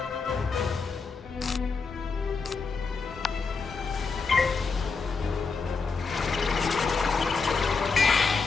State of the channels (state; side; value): quieter; right; 4.7 dB